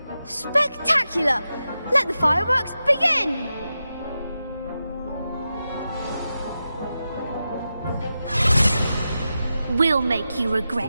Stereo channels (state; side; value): inverted; both; correlation -0.91